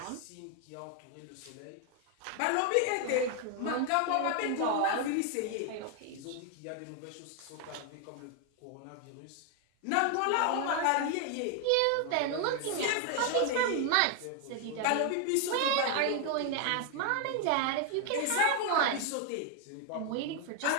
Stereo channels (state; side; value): different; both; correlation 0.01